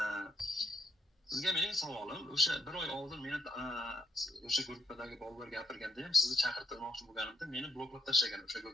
Sizga mening savolim, o'sha bir oy oldin meni o'sha gruppadagi bolalar gapirganda ham sizni chaqirtirmoqchi bo'lganimda meni bloklab tashlagan o'sha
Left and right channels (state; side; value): normal; both; correlation 0.78